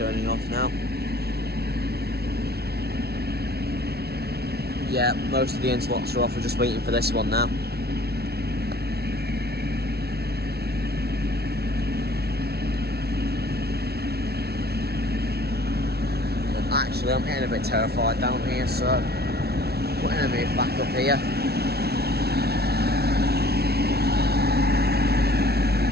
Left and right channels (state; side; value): late; left; 0.46 ms